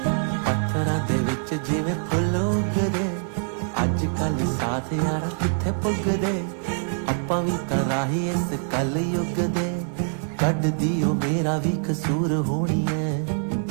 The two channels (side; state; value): left; silent; 62 dB below the other